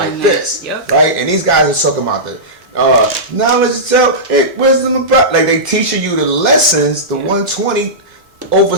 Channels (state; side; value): normal; both; correlation -0.15